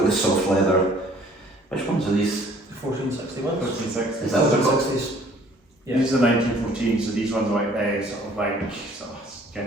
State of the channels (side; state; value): both; normal; correlation 0.56